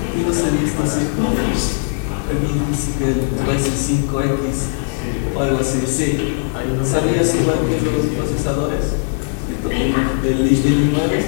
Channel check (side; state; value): right; silent; digital silence